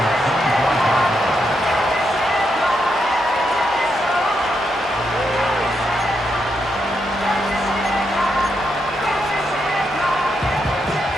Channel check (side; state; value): both; normal; correlation 0.81